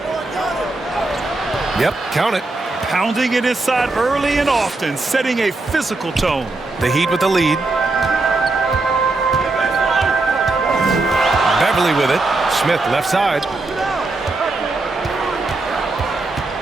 Yep, count it. Pounding it inside early and often, setting a physical tone. The Heat with the lead. Beverly with it. Smith left side.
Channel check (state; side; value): quieter; left; 3.2 dB